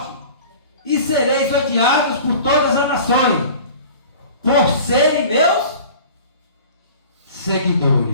e sereis odiados por todas as nações, por serem meus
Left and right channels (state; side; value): inverted; both; correlation -0.42